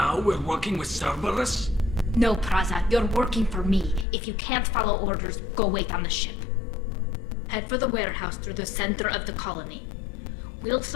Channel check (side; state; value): right; drops out; at 4.0 s